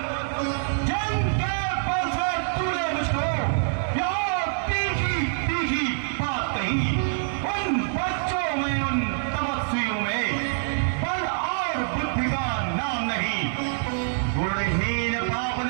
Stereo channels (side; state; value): left; silent; 61 dB below the other